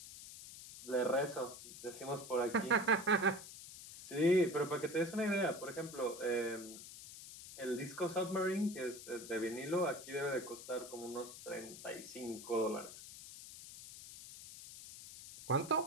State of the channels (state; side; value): noise; left; hiss, 13 dB below the sound